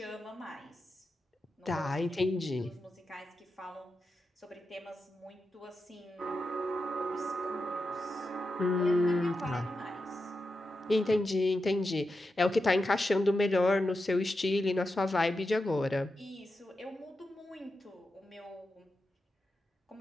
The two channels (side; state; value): both; normal; correlation 0.89